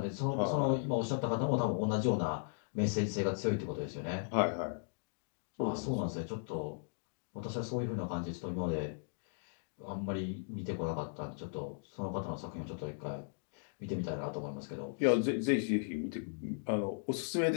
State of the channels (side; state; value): right; silent; digital silence